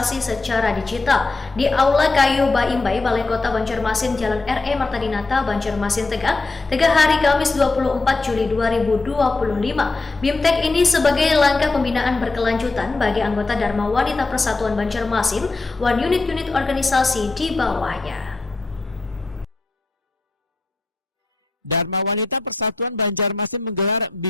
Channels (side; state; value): right; quieter; 3.5 dB